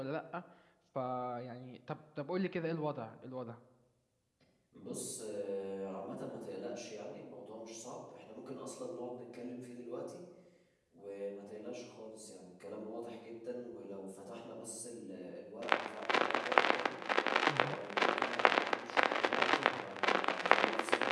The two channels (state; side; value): identical; both; correlation 1.00